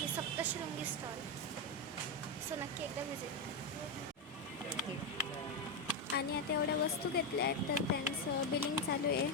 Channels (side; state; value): both; normal; correlation 0.07